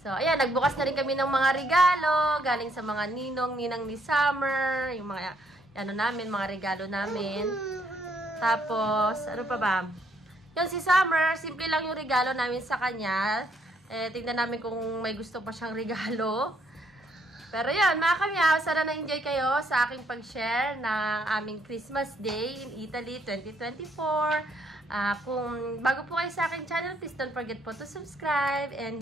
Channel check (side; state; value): both; normal; correlation 0.70